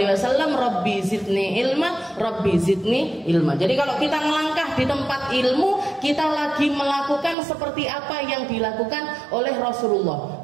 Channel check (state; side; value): drops out; left; at 7.4 s